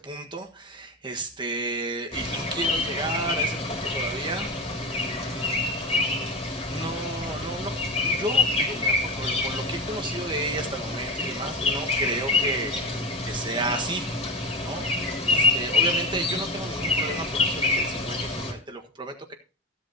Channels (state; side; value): normal; both; correlation 0.21